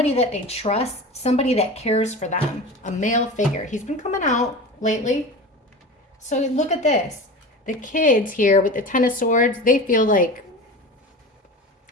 that they trust, somebody that cares for them, a male figure. He's been coming out lately. So look at this. The kids here with the Ten of Swords, they feel like,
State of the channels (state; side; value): normal; both; correlation 0.32